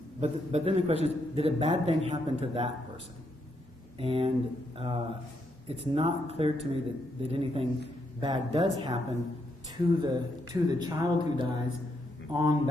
then the question is, did a bad thing happen to that person? And it's not clear to me that anything bad does happen to the child who dies on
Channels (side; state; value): both; normal; correlation 0.78